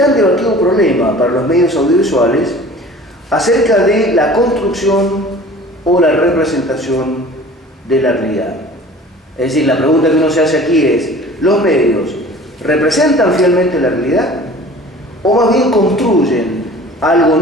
debatido problema para los medios audiovisuales acerca de la construcción o la representación de la realidad. Es decir, la pregunta que uno se hace aquí es, ¿los medios representan fielmente la realidad o más bien construyen algo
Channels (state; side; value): normal; both; correlation 0.45